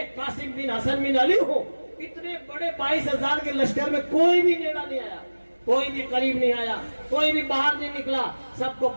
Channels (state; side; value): inverted; both; correlation -1.00